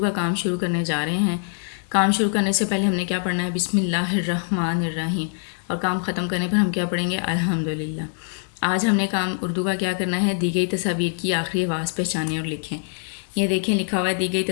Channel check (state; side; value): silent; right; 63 dB below the other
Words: کام شروع کرنے جا رہے ہیں۔ کام شروع کرنے سے پہلے ہم نے کیا پڑھنا ہے؟ بسم اللہ الرحمن الرحیم، اور کام ختم کرنے پر ہم کیا پڑھیں گے؟ الحمدللہ۔ آج ہم نے کام اردو کا کیا کرنا ہے؟ دی گئی تصاویر کی آخری آواز پہچانیں اور لکھیں۔ یہ دیکھیں لکھا ہوا ہے، دی گئی